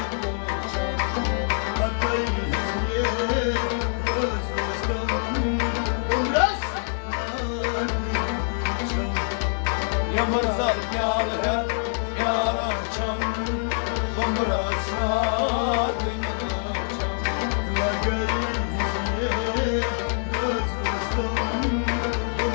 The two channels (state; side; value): silent; right; 62 dB below the other